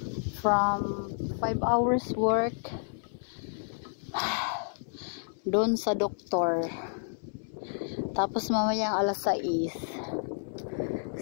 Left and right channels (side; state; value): right; silent; 58 dB below the other